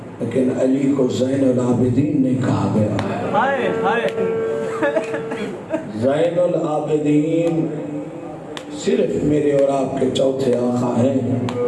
لیکن علی کو زین العابدین نہیں کہا گیا۔ زین العابدین صرف میرے اور آپ کے چوتھے آقا ہیں۔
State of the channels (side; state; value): both; identical; correlation 1.00